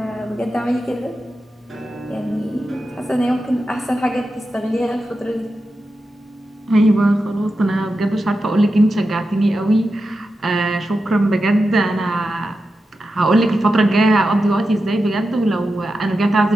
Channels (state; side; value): normal; both; correlation 0.90